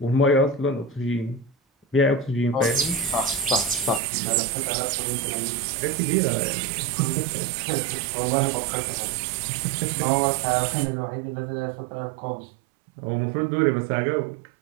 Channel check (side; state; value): left; drops out; at 4.0 s